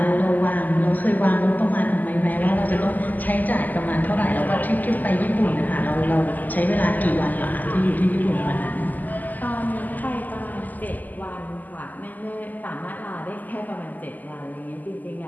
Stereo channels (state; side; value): late; right; 0.083 ms